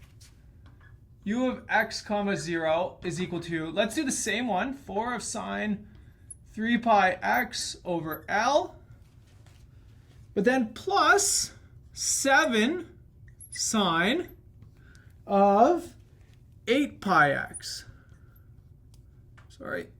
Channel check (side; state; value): both; identical; correlation 1.00